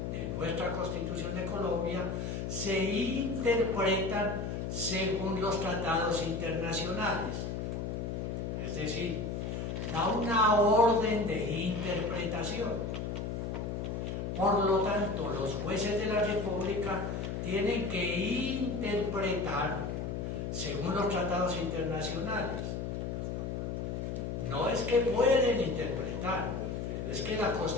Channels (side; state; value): left; noise; hum, 3 dB below the sound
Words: de nuestra Constitución de Colombia, se interpretan según los tratados internacionales. Es decir, da una orden de interpretación. Por lo tanto, los jueces de la República tienen que interpretar según los tratados internacionales. No es que pueden interpretar, es que la